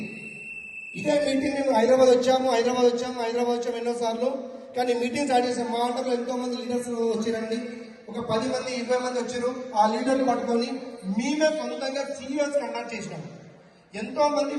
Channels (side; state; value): both; identical; correlation 1.00